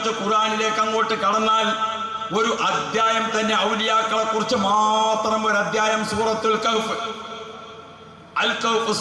ഖുർആനിലേക്ക് അങ്ങോട്ട് കടന്നാൽ ഒരു അധ്യായം തന്നെ ഔലിയാക്കളെ കുറിച്ച് മാത്രം ഒരു അധ്യായം. സൂറത്തുൽ കഹ്ഫ്, അൽ കഹ്ഫ്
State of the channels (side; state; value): both; identical; correlation 1.00